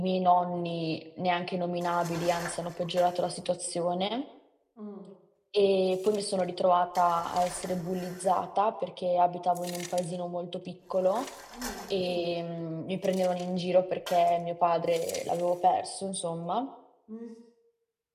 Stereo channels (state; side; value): identical; both; correlation 1.00